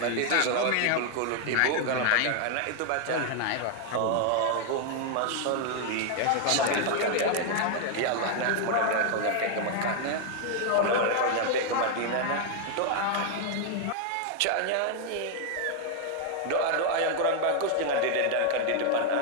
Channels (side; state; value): both; different; correlation 0.00